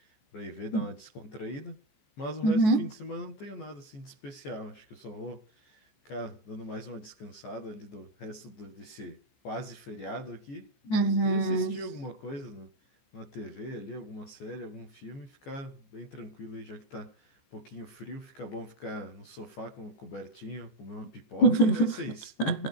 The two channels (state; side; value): late; right; 14 ms